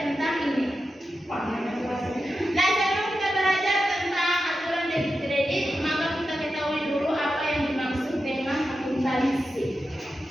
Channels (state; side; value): normal; both; correlation 0.90